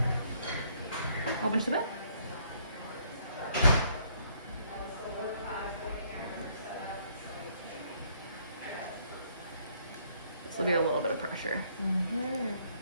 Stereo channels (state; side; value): inverted; both; correlation -0.66